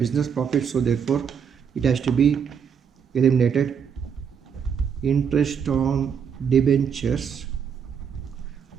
profit, so therefore it has to be eliminated. Interest on debentures,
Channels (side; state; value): left; quieter; 7.2 dB